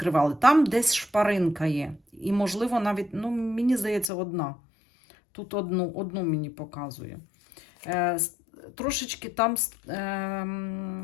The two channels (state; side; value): drops out; right; at 4.1 s